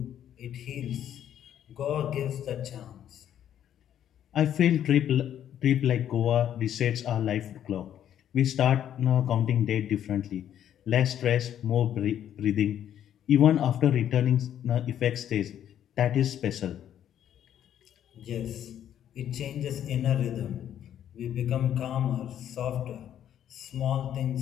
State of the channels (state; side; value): quieter; right; 10.3 dB